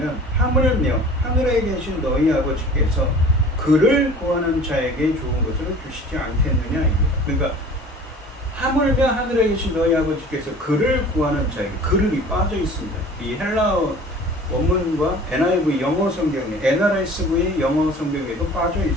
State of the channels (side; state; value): both; normal; correlation 0.44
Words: 하물며 하늘에 계신 너희 아버지께서 그를 구하는 자에게 좋은 것을 주시지 않겠느냐입니다. 그러니까 하물며 하늘에 계신 너희 아버지께서 그를 구하는 자에게, 그를이 빠져 있습니다. 이 헬라어 원문과 NIV 영어 성경에, NRSV 영어 성경에도 빠져